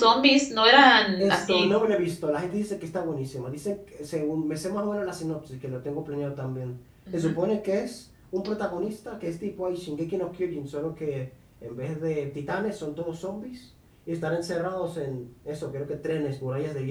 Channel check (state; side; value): identical; both; correlation 1.00